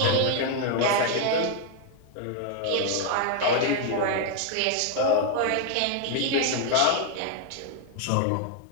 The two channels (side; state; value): both; different; correlation 0.00